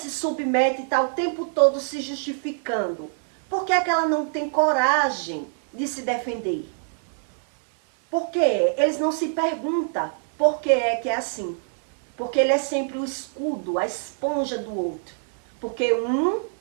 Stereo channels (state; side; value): silent; left; digital silence